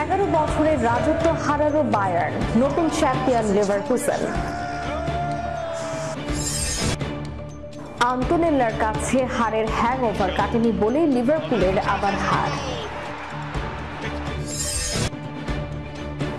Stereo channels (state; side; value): identical; both; correlation 1.00